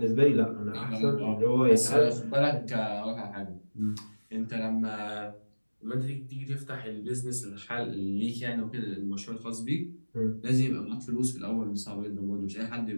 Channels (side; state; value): both; inverted; correlation -1.00